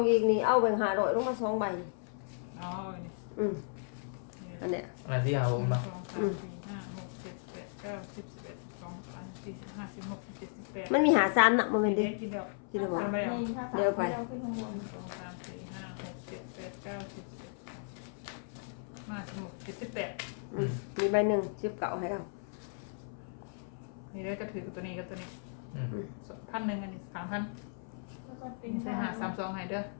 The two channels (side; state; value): right; silent; 54 dB below the other